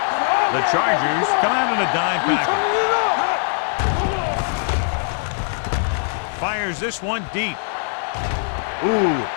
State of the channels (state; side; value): silent; right; 62 dB below the other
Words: The Chargers come out in a dime package. Fires this one deep. Ooh,